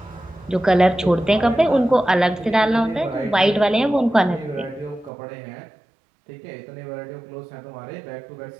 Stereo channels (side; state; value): left; drops out; at 5.1 s